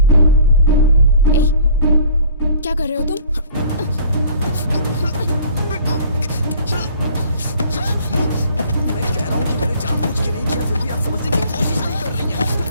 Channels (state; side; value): inverted; both; correlation -0.51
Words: क्या कर रहे हो तुम? मैं कह रहा हूँ कि मैंने जानबूझ के नहीं किया, फिर भी आप समझने की कोशिश नहीं कर रही हैं।